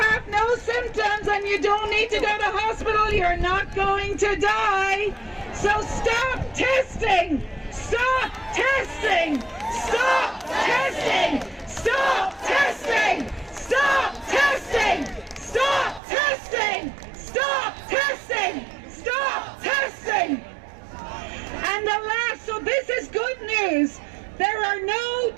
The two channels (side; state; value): left; drops out; at 16.0 s